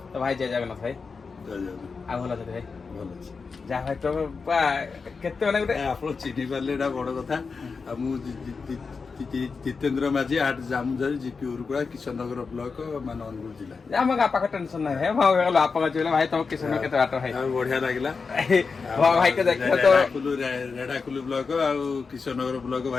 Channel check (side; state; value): right; quieter; 4.9 dB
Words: तो भाई जय जगन्नाथ भाई आ भला छै भाई ଭଲ ଅଛି जा भाई तो केते माने गुटे ଆପଣ ଚିହ୍ନି ପାରିଲେ ଏଇଟା ବଡ କଥା ଆଉ ମୁଁ ଜିତେନ୍ଦ୍ର ମାଝୀ ଆଟ ଜାମୁଝାରି ଜିପି ଉରୁକୁଳା କିଶନନଗର ବ୍ଲକ ମାନେ ଅନୁଗୁଳ ଜିଲ୍ଲା ଆମ ପାଖ ଟେନସନ ନାହିଁ ହେ ଭାଇ ଗଲା ଆପଣ କହିଲେ ଭାଇ ତମ କିଶନ କେତେ ବାଟ ଭାଇ ବଢିଆ ଲାଗିଲା ଭାଇ କେ ଦେଖିବ ତ ରେଢାକୁଲୁ ବ୍ଲକ ଆଉ କିଶନନଗର ବ୍ଲକ